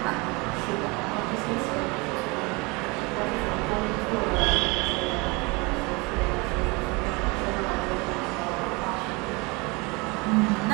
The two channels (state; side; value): quieter; left; 26.8 dB